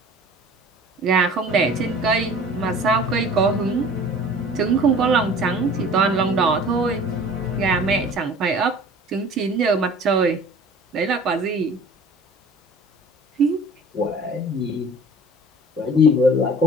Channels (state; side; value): normal; both; correlation 0.45